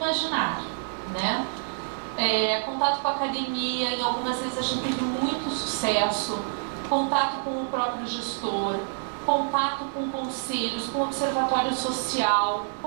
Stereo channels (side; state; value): left; silent; digital silence